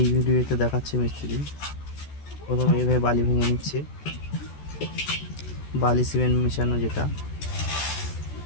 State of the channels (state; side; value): late; right; 14 ms